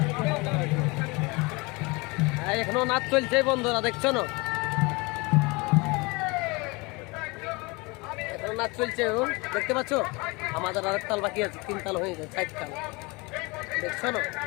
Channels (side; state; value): right; quieter; 26.3 dB